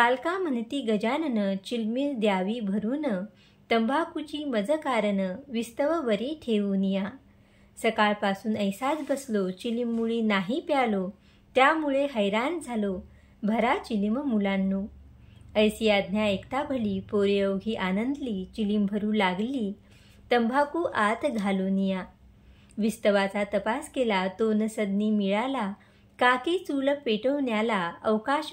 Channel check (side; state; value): both; identical; correlation 1.00